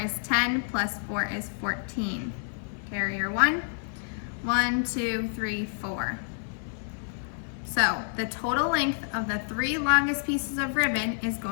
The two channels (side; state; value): right; silent; digital silence